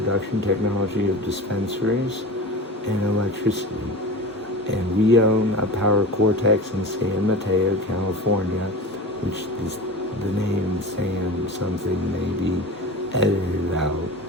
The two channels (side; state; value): both; normal; correlation 0.32